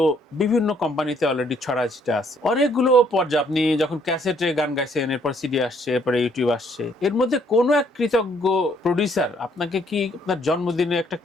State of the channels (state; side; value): normal; both; correlation 0.66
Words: বিভিন্ন কোম্পানিতে অলরেডি ছড়াছিটা আছে, অনেকগুলো পর্যায়ে আপনি যখন ক্যাসেটে গান গাইছেন, এরপর সিডি আসছে, এরপরে ইউটিউব আসছে, এর মধ্যে কোনো এক কৃতজ্ঞ প্রডিউসার আপনাকে কি আপনার জন্মদিনে একটা